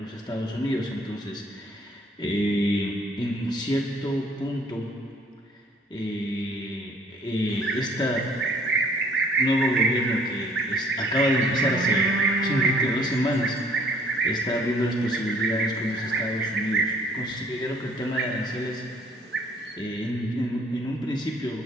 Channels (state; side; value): normal; both; correlation 0.58